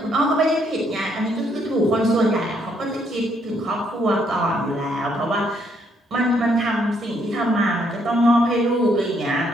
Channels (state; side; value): normal; both; correlation 0.71